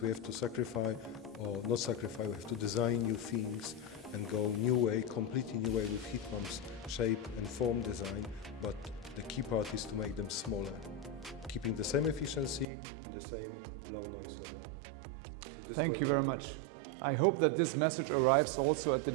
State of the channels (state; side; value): drops out; left; at 12.7 s